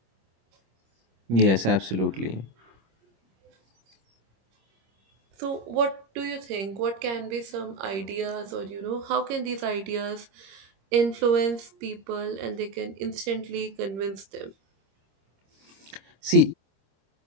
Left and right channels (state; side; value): late; left; 26 ms